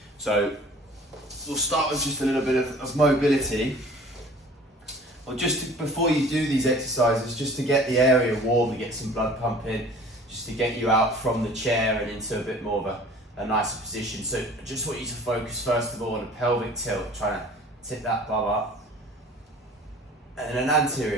So we'll start with just a little bit of mobility. Well, before you do these exercises, just to get the area warm, to get some blood pumping, just to get you out from the chair and into a bit more of a nicer position. So I just want you to focus first of all on a pelvic tilt, trying to tip that bum up. And an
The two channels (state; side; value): normal; both; correlation 0.47